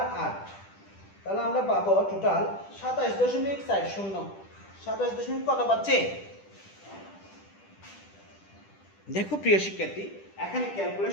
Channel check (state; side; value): late; right; 10 ms